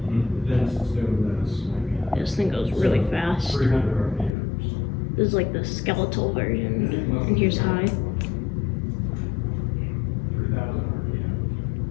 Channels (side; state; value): right; drops out; at 4.3 s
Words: This thing goes really fast. This is like the skeletal version, and here's high.